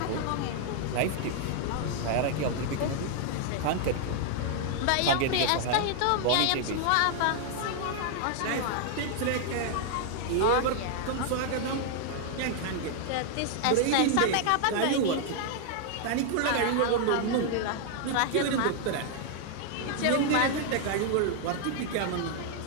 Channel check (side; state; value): both; different; correlation 0.00